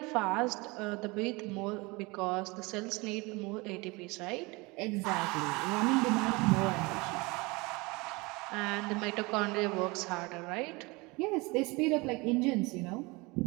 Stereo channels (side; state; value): left; quieter; 25.2 dB